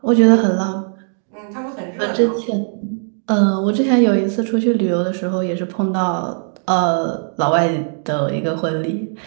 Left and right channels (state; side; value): silent; left; 67 dB below the other